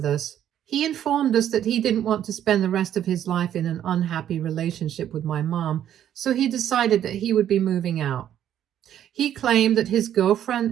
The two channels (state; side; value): quieter; left; 10.6 dB